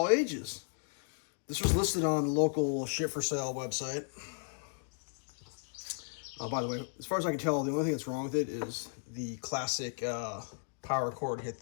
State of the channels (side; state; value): right; silent; digital silence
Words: ages. This was listed on the local ship for sale website. By the way, as far as I can tell, the only thing that's wrong with it is the classic power cord hit